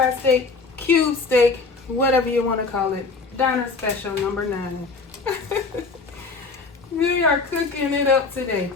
steak, cube steak, whatever you wanna call it. Diner special number 9. We are cooking it up today.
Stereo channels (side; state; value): right; quieter; 4.2 dB